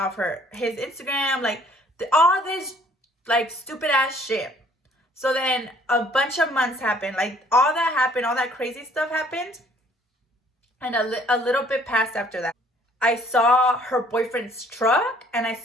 his Instagram, like, all this, like, stupid ass shit. So then a bunch of months happened. Like, all that happened, all that crazy stuff happened. And a little bit passed after that. I saw her boyfriend's truck and I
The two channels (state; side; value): normal; both; correlation 0.59